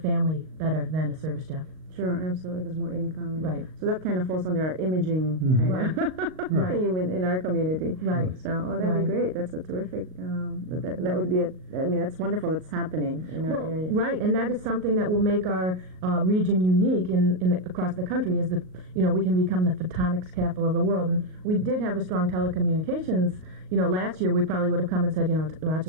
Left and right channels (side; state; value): left; late; 38 ms